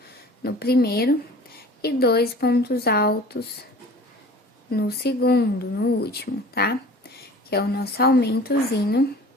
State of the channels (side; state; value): both; normal; correlation 0.44